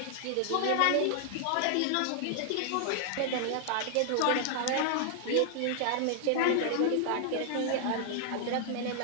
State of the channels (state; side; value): different; both; correlation 0.00